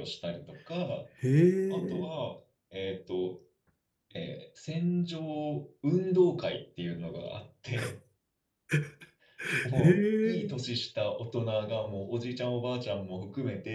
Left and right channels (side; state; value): both; identical; correlation 1.00